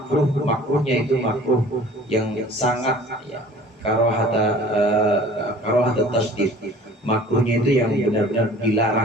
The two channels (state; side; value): normal; both; correlation 0.48